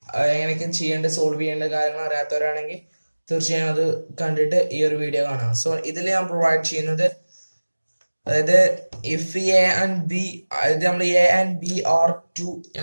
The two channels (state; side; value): inverted; both; correlation -1.00